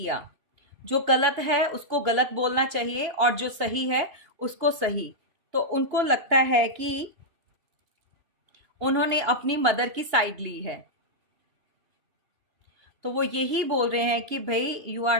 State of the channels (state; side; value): late; left; 2.8 ms